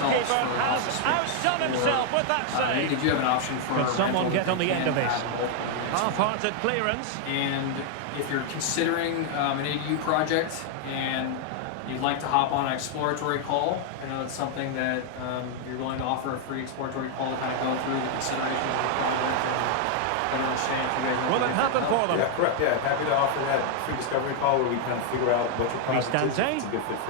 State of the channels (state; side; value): different; both; correlation 0.00